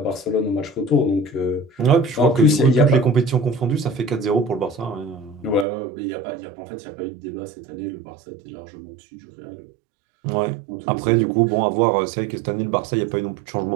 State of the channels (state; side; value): drops out; left; at 5.7 s